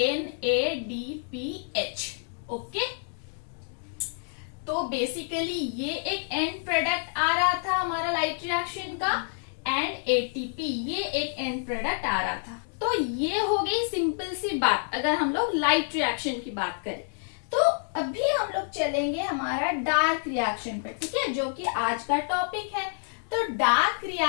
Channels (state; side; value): silent; right; digital silence